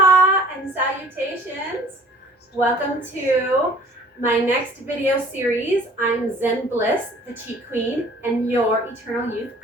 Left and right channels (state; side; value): normal; both; correlation 0.51